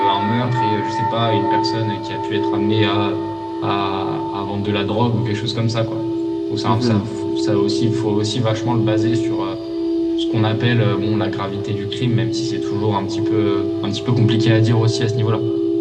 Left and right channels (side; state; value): both; identical; correlation 1.00